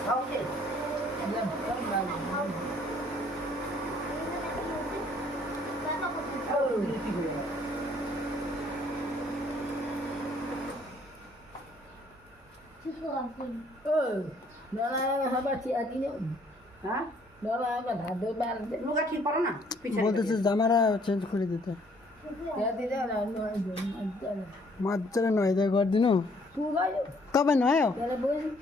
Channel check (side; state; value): both; normal; correlation 0.63